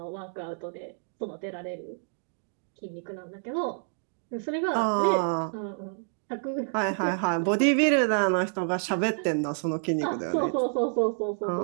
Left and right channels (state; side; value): silent; left; digital silence